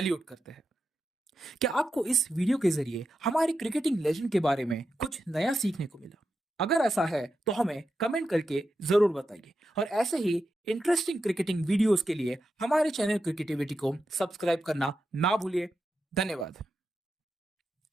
करते हैं। क्या आपको इस वीडियो के जरिए हमारे क्रिकेटिंग लेजेंड के बारे में कुछ नया सीखने को मिला? अगर ऐसा है तो हमें कमेंट करके जरूर बताइए। और ऐसे ही इंटरेस्टिंग क्रिकेटिंग वीडियोस के लिए हमारे चैनल क्रिकेटिविटी को सब्सक्राइब करना ना भूलिए। धन्यवाद।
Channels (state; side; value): normal; both; correlation 0.88